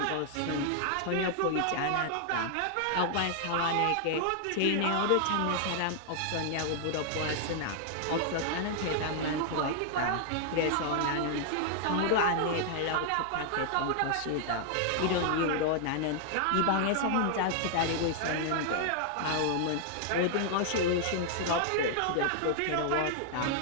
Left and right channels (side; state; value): both; different; correlation 0.00